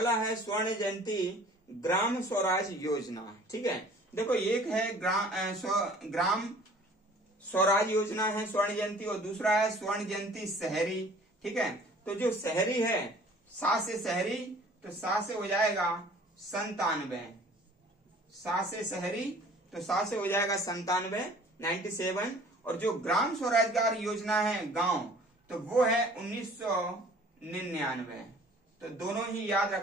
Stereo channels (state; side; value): normal; both; correlation 0.51